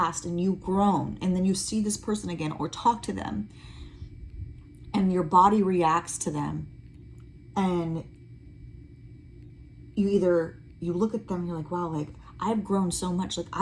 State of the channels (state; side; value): identical; both; correlation 1.00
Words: and you've grown and then you see this person again or talk to them and your body reacts to them and you look at them and you're like, wow, like I've grown so much. Like